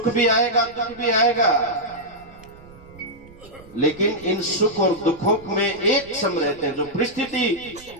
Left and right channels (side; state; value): right; noise; rumble, 23 dB below the sound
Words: भी आएगा दुख भी आएगा, लेकिन इन सुख और दुखों में एक सम रहते हैं। जो परिस्थिति